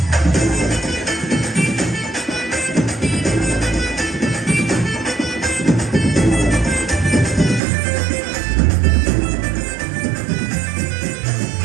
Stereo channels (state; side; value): drops out; left; at 7.6 s